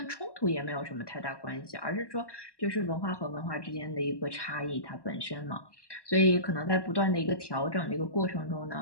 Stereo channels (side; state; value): right; late; 1.1 ms